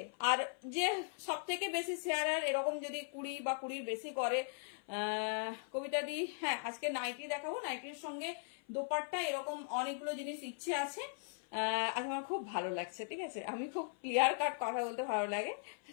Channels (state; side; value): silent; right; 52 dB below the other